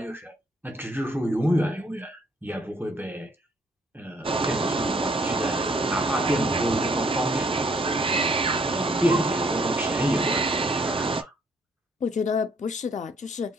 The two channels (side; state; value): both; normal; correlation 0.66